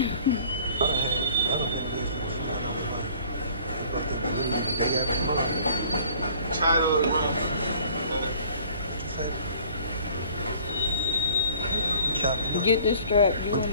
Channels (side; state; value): both; inverted; correlation -0.52